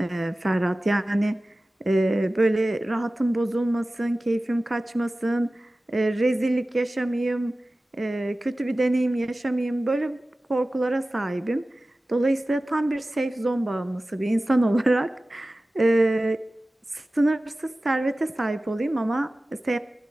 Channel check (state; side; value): normal; both; correlation 0.96